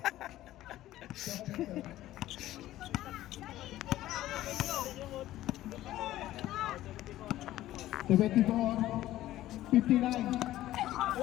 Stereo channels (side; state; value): right; quieter; 14.6 dB